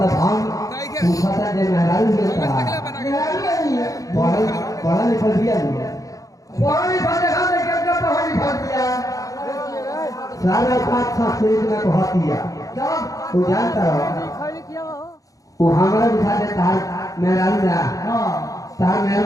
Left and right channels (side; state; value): right; late; 0.17 ms